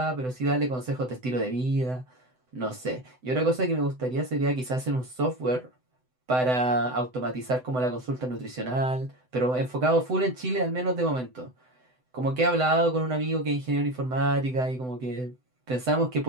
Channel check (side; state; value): left; late; 7.9 ms